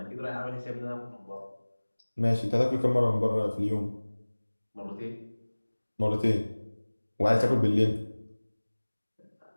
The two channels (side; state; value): both; inverted; correlation -1.00